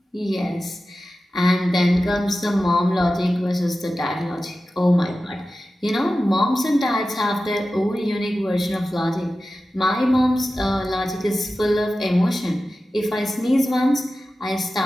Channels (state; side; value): normal; both; correlation 0.94